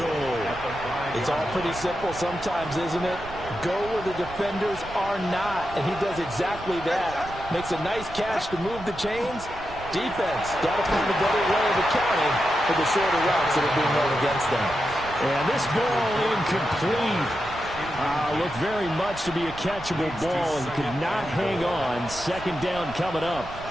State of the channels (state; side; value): noise; right; rumble, 14 dB below the sound